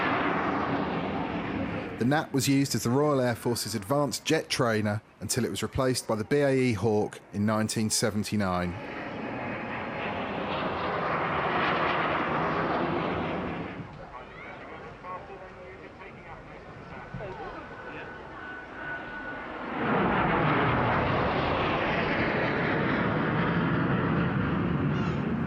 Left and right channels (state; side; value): identical; both; correlation 1.00